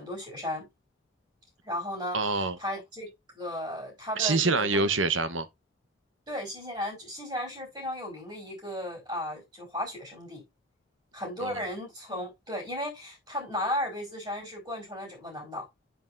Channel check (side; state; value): both; normal; correlation 0.16